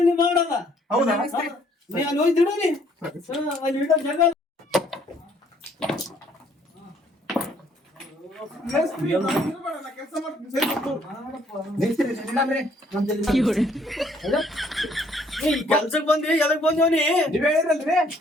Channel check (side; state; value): both; normal; correlation 0.64